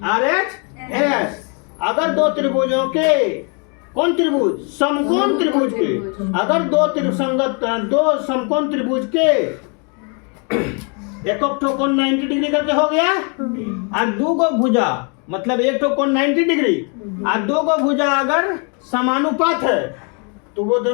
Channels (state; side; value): quieter; right; 36.7 dB